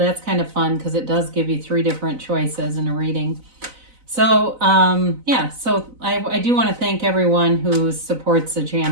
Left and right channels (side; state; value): left; late; 4.0 ms